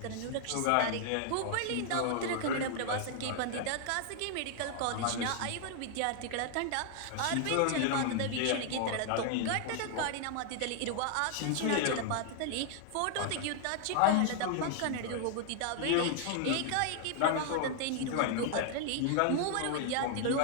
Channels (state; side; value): different; both; correlation 0.00